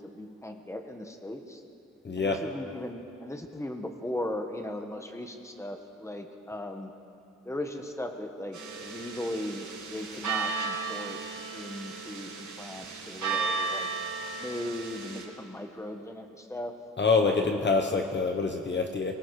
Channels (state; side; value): normal; both; correlation 0.40